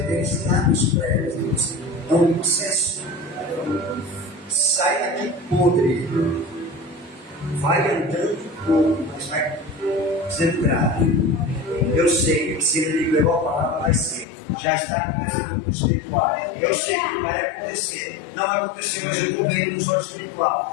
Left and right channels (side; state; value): right; drops out; at 14.2 s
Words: tem ensinado isso para elas, é um processo. Sai daqui podre, vai andando pouco, mas vai sendo grave. Eu sei que se ele levou a palavra, vai ser. Já está começando no espiritual. Eu sei que vai acontecer. Não vai acontecer, mas eu estou vendo no olho